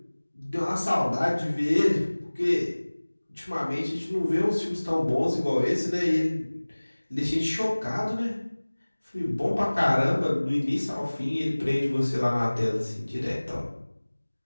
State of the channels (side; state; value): both; inverted; correlation -1.00